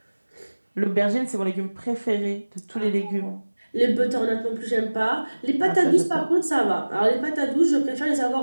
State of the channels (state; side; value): inverted; both; correlation -1.00